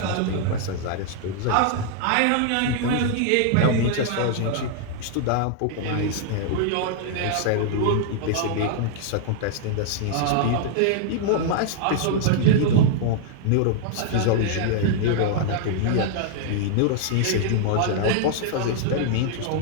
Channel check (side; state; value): both; different; correlation -0.01